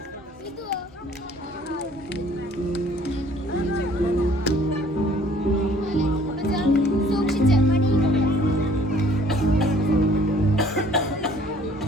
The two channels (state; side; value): normal; both; correlation 0.56